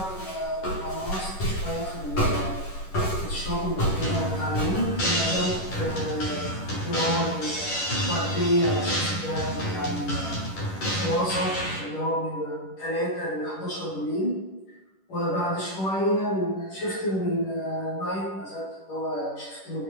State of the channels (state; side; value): late; right; 11 ms